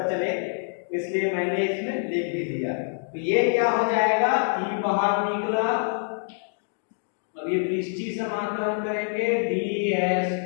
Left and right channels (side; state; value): right; silent; 61 dB below the other